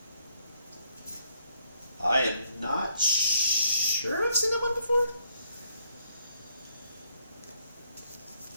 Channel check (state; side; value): inverted; both; correlation -0.72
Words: I am not sure I've seen that one before.